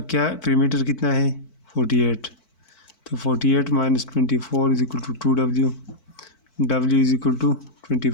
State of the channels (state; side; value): late; right; 4.5 ms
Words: क्या perimeter कितना है? 48, तो 48 minus 24 is equal to 2W। W is equal to